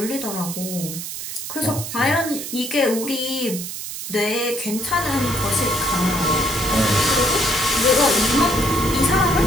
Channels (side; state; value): right; noise; hiss, 7 dB below the sound